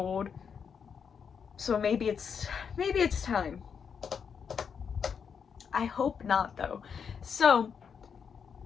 so maybe it's time. I hope not, though. So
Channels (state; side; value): quieter; right; 6.7 dB